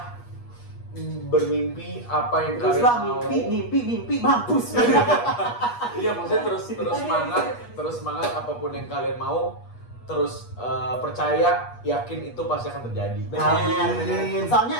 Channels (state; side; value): late; right; 8.3 ms